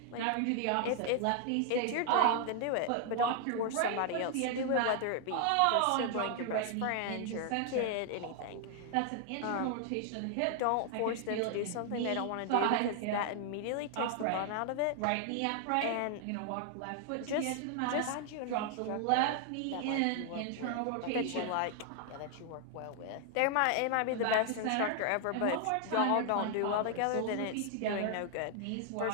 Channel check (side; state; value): both; different; correlation 0.00